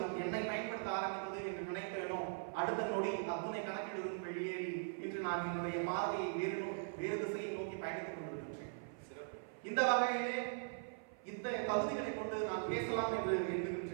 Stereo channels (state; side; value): silent; left; 51 dB below the other